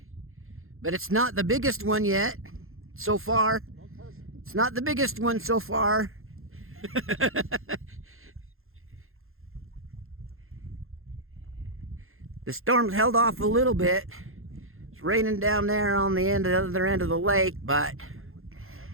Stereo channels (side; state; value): left; late; 0.61 ms